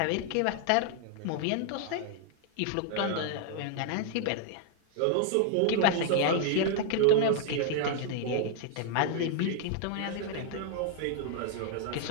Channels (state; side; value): different; both; correlation 0.00